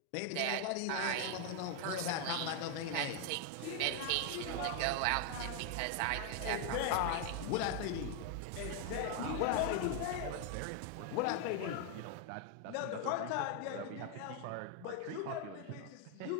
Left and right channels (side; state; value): both; different; correlation 0.01